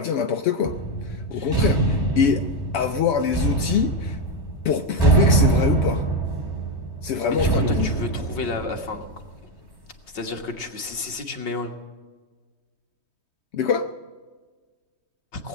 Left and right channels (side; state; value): right; late; 3.2 ms